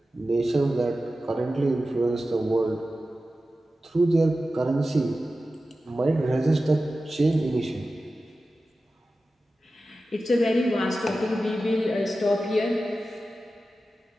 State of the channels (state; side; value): normal; both; correlation 0.94